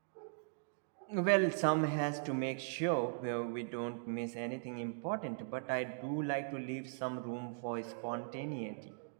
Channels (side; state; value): left; silent; digital silence